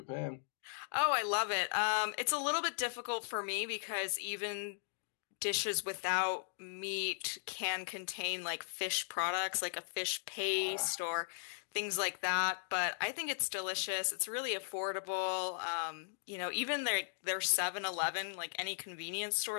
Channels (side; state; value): right; silent; digital silence